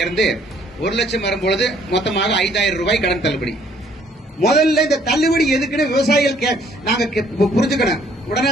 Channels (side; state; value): both; normal; correlation 0.63